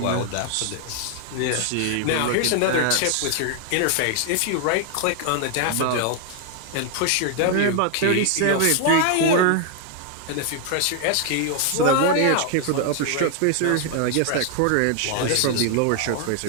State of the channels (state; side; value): different; both; correlation 0.00